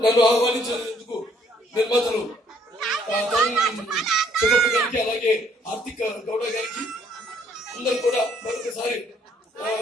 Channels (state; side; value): normal; both; correlation 0.65